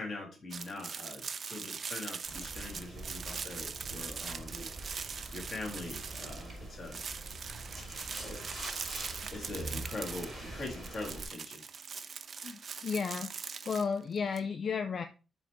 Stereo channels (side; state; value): both; normal; correlation 0.80